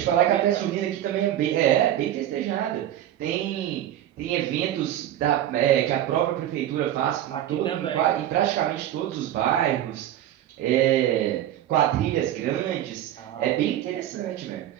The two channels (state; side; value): quieter; left; 12.1 dB